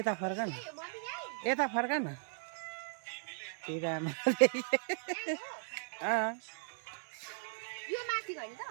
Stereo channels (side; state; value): left; silent; 53 dB below the other